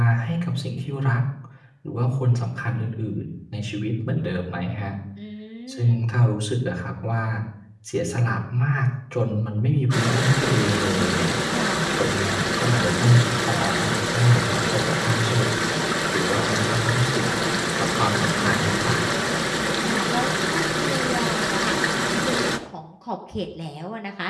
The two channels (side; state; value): both; identical; correlation 1.00